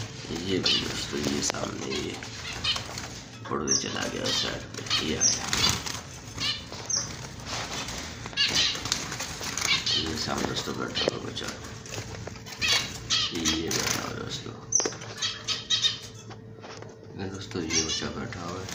ये दोस्तों, ये सामने ये उड़ के चला गया उस साइड पे, ये आया ये सामने दोस्तों बैठा हुआ बच्चा, ये बैठा हुआ दोस्तों ये बच्चा बैठा हुआ है।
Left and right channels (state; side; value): identical; both; correlation 1.00